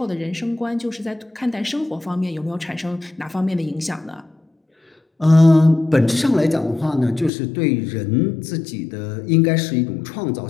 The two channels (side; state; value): right; drops out; at 7.3 s